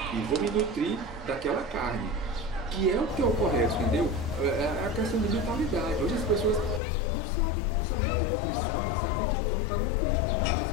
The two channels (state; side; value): drops out; right; at 6.8 s